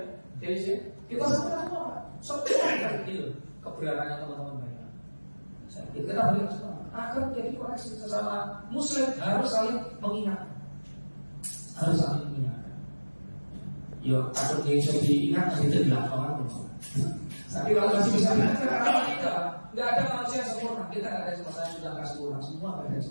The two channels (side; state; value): both; inverted; correlation -1.00